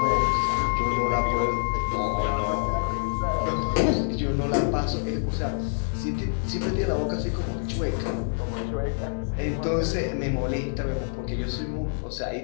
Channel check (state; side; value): silent; right; digital silence